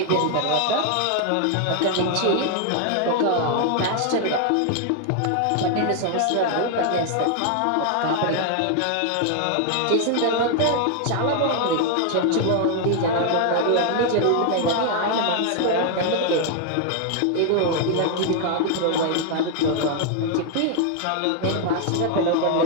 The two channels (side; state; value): both; different; correlation 0.00